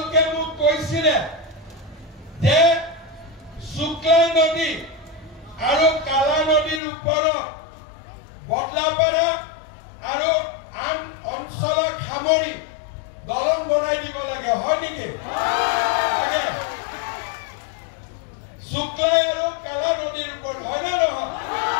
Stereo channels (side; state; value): right; drops out; at 6.8 s